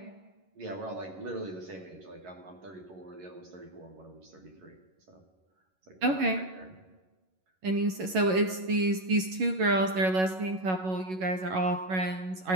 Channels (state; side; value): late; left; 11 ms